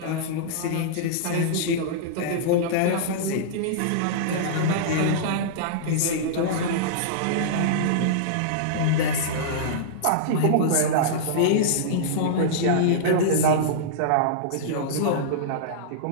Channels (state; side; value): different; both; correlation -0.03